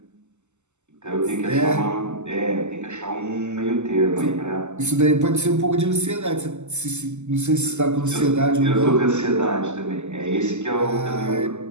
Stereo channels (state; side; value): late; left; 0.83 ms